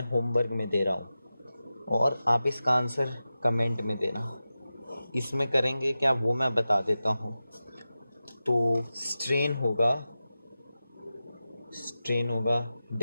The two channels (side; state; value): both; inverted; correlation -0.94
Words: होमवर्क में दे रहा हूँ, और आप इसका आंसर कमेंट में देना। इसमें करेंगे क्या वो मैं बता देता हूँ। तो स्ट्रेन होगा